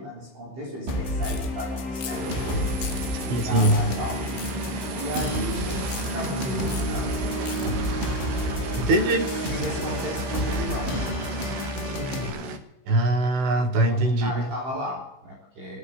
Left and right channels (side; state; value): left; late; 16 ms